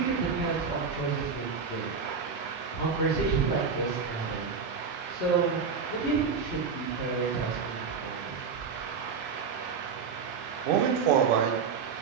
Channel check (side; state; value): left; quieter; 5.8 dB